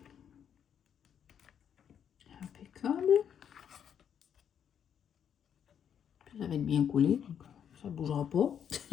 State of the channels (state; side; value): quieter; right; 8.5 dB